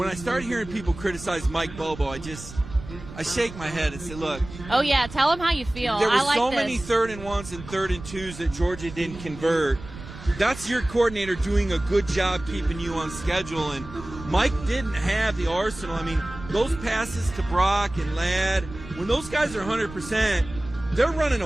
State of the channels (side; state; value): right; noise; rumble, 14 dB below the sound